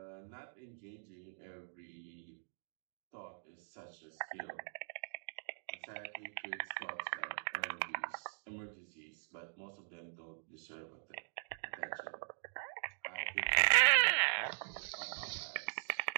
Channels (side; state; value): left; silent; digital silence